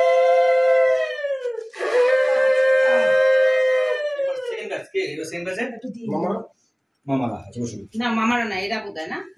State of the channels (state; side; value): identical; both; correlation 1.00